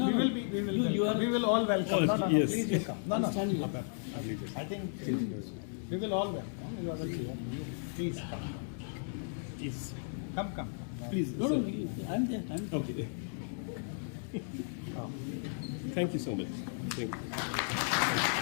we will all welcome. Oh, No, yes. please you come. No. Stand here. I think we will all welcome. You are the chair. Please come. Please. Come. Please. No, I'm there. Okay. Thank you so much. Thank you.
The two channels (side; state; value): right; silent; digital silence